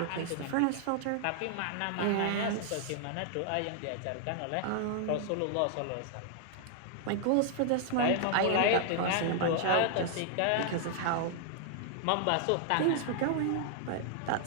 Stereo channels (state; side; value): different; both; correlation -0.01